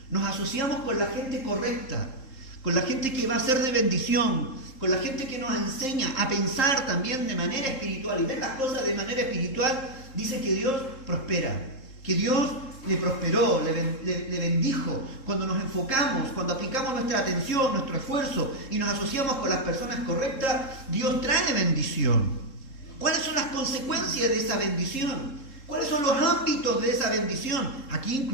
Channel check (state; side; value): late; right; 3.7 ms